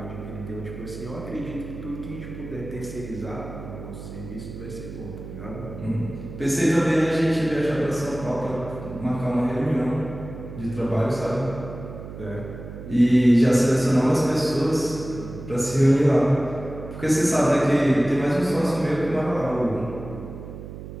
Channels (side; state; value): right; noise; hum, 11 dB below the sound